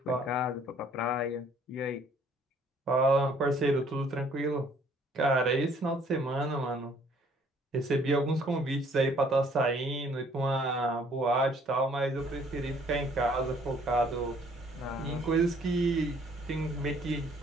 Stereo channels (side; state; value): both; normal; correlation 0.60